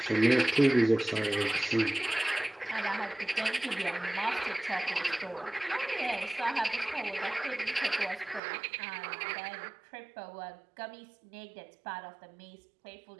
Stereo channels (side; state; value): left; drops out; at 8.4 s